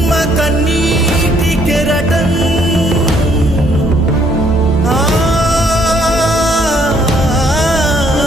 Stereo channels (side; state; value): both; normal; correlation 0.67